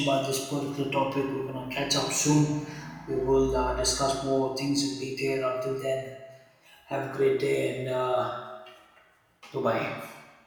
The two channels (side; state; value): both; identical; correlation 1.00